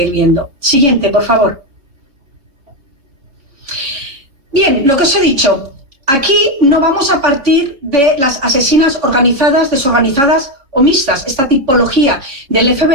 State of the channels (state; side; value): late; left; 3.6 ms